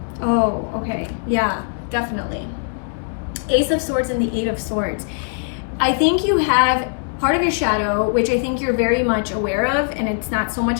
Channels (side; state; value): right; silent; 65 dB below the other